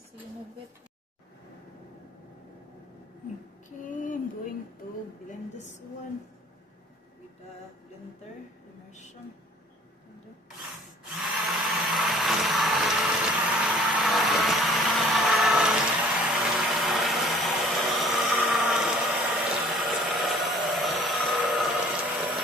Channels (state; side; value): normal; both; correlation 0.52